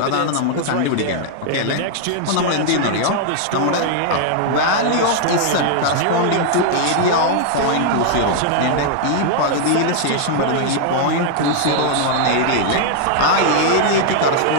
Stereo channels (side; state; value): both; different; correlation -0.01